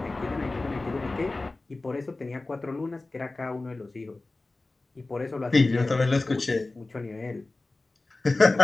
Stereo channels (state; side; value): quieter; right; 3.2 dB